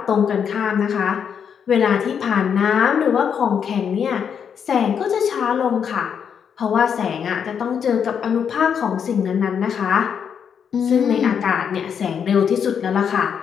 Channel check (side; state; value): right; quieter; 7.5 dB